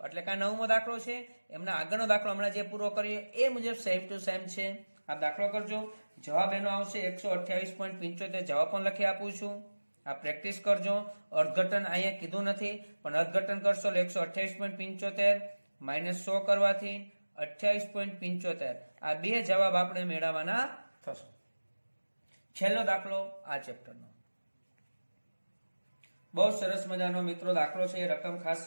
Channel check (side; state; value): both; inverted; correlation -1.00